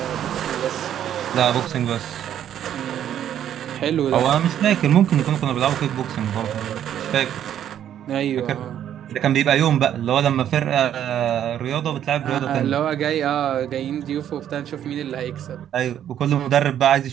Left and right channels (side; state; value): left; quieter; 10.4 dB